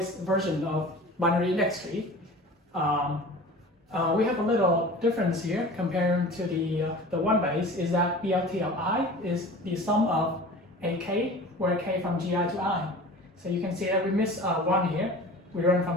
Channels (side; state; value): both; normal; correlation 0.39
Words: version of binary index tree. We have a little difference here comparing to the one base, is that BLT of I is the sum of AK, where K from GI to I. So you can see that we miss 1 here. We run